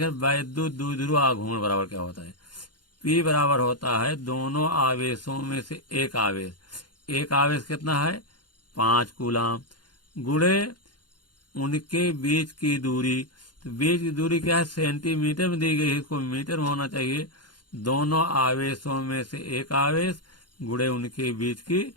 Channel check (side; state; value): right; late; 0.71 ms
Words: वैद्युत द्विध्रुव आघूर्ण बराबर क्या होता है, P बराबर होता है दोनों आवेशों में से एक आवेश, एक आवेश कितना है 5 कूलाम, गुणे उनके बीच की दूरी। तो बीच की दूरी क्या है, सेंटीमीटर में दी गई है, इसको मीटर में होना चाहिए। दोनों आवेशों में से एक आवेश गुणे उनके बीच की